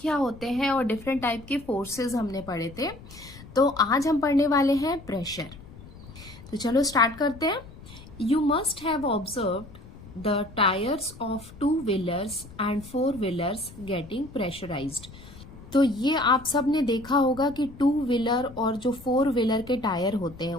क्या होते हैं और डिफरेंट टाइप के फोर्सेस हमने पढ़े थे। तो आज हम पढ़ने वाले हैं प्रेशर। तो चलो स्टार्ट करते हैं। You must have observed the tyres of two wheelers and four wheelers getting pressurised. तो ये आप सब ने देखा होगा कि टू व्हीलर और जो फोर व्हीलर के टायर होते हैं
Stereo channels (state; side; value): noise; left; rumble, 18 dB below the sound